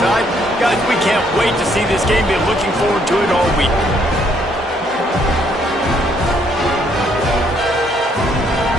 Guys, we can't wait to see this game. Been looking forward to it all week.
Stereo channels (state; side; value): normal; both; correlation 0.69